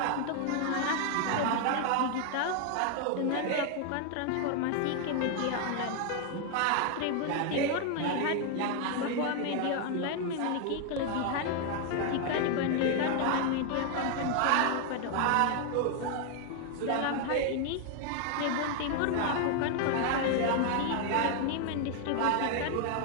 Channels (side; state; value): both; different; correlation 0.00